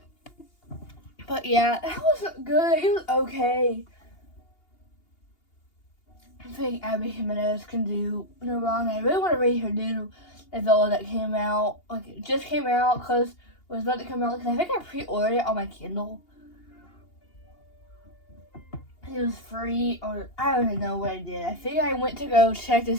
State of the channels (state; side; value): late; right; 2.8 ms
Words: But yeah, that was good. It was okay. I think Abby Jimenez can do no wrong. I really want to read her new novella that came out. Like, it just came out because it was about to come out. Because I think I pre-ordered it on my Kindle. It was free, or I don't even know what I did. I think I went to go check to